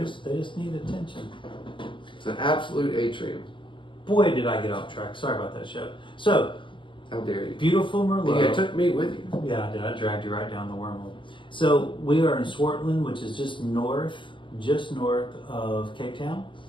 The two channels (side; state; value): right; late; 0.24 ms